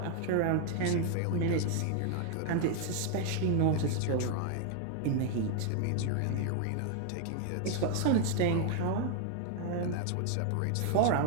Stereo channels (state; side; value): different; both; correlation 0.00